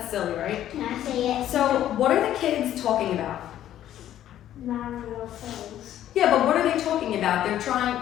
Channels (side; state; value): right; quieter; 11.9 dB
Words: silly, right? Can I say it? So, what are the kids talking about? Not real things. Yeah, but what are they talking about? They're trying